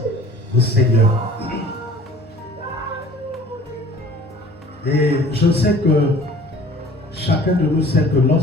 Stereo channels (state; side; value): normal; both; correlation 0.48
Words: au Seigneur. Et je sais que chacun de nous sait que